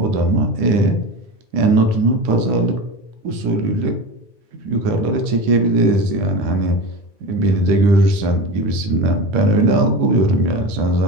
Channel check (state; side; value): late; left; 10 ms